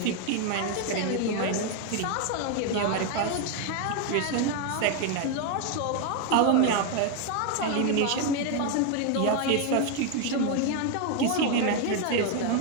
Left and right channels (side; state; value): both; different; correlation 0.01